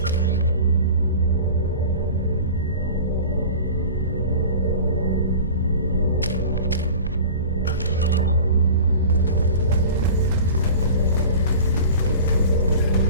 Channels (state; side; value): inverted; both; correlation -0.38